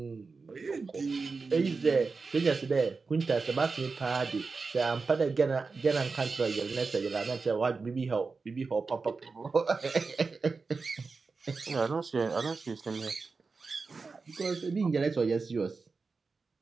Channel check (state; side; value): quieter; left; 4.4 dB